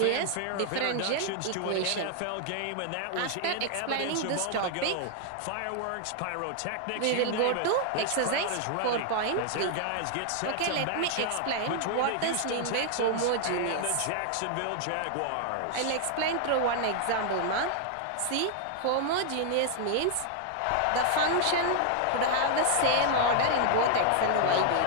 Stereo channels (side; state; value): both; different; correlation 0.00